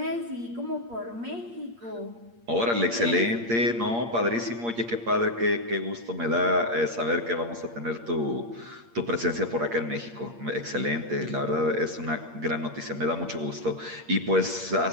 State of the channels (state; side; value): late; left; 8.6 ms